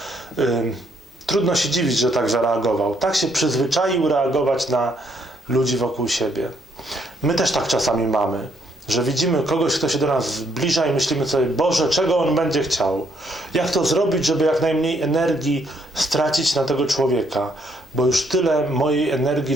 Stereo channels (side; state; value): both; normal; correlation 0.71